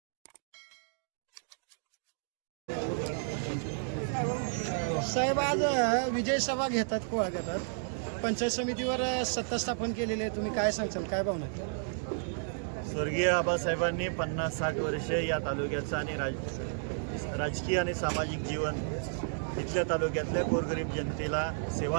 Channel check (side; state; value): left; silent; digital silence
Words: साहेब, आज विजय सभा घेतात, कोळा घेतात. पंचायत समितीवर सत्ता स्थापन केलेली आहे. तुम्ही काय सांगचाल, काय भावना आहे? स्वर्गीय आबासाहेबांनी 50-60 वर्षे या तालुक्याचं आणि राजकीय आणि सामाजिक जीवन इथल्या तालुक्यातल्या गोरगरीब जनतेला